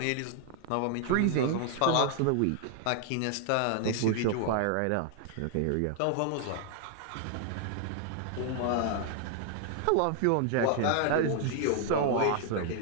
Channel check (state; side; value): different; both; correlation 0.00